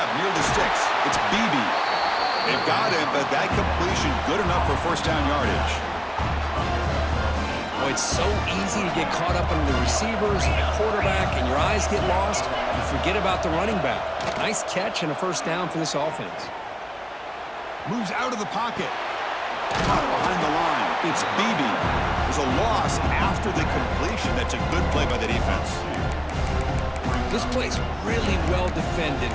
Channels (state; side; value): identical; both; correlation 1.00